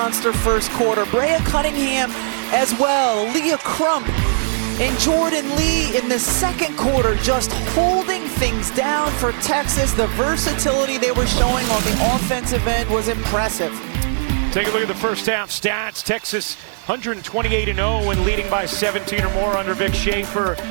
first quarter. Brea Cunningham as well. Leah Crump and Jordan Lee in the second quarter, just holding things down for Texas. The versatility they were showing on the offensive end was impressive. Take a look at the first half stats. Texas 128-0 and leading by 17 or more under Vic Schaefer.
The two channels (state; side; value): silent; left; digital silence